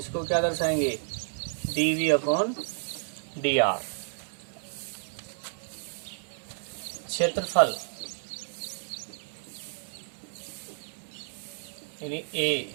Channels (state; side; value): silent; left; digital silence